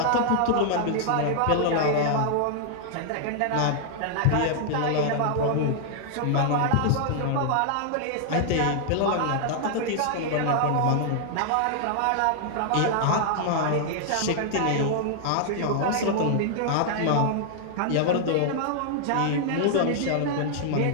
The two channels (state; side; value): different; both; correlation -0.01